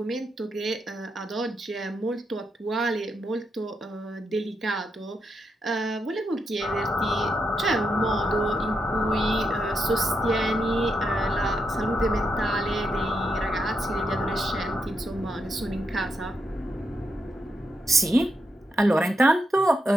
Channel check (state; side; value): normal; both; correlation 0.82